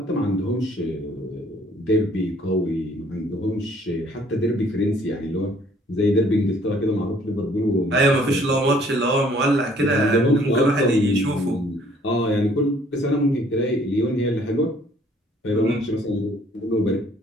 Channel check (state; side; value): normal; both; correlation 0.60